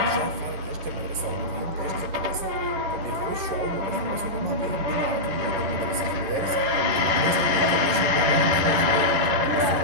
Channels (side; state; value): left; late; 11 ms